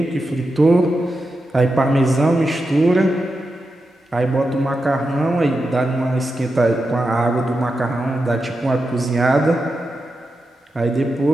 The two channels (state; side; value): normal; both; correlation 0.89